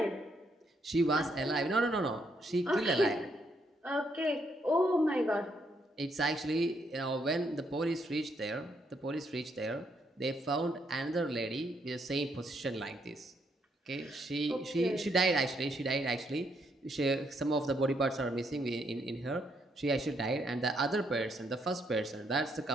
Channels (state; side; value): normal; both; correlation 0.74